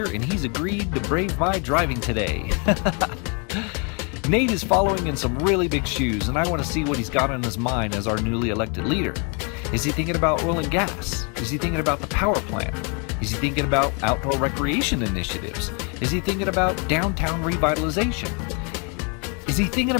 and he's agreed to brave my driving today. Nate is following in some really big shoes, and I want to see what he's got on his mind as our newly elected leader. Is he thinking about oil and gas? Is he thinking about the power plant? Is he thinking about outdoor recreation initiatives? Is he thinking about downtown revitalization? Is he thinking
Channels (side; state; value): right; quieter; 35.3 dB